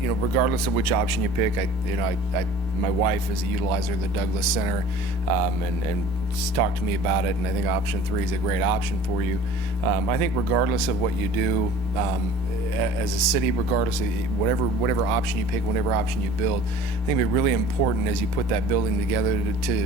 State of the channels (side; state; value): both; normal; correlation 0.45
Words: of which option you pick, my wife is a utilizer of the Douglas Center, and she's talked to me about it, and I think option 3 is a great option for you. I think regardless of what you do, as a city, regardless of whatever option you pick, whatever option you build, I think it'd be really important as you put that building together